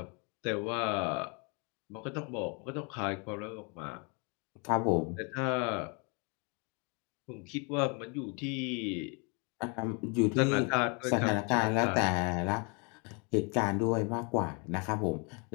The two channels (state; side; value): quieter; right; 33.8 dB